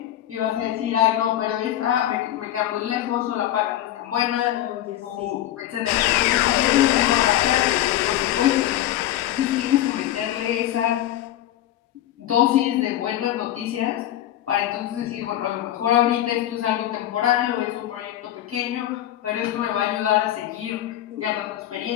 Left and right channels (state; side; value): quieter; right; 12.9 dB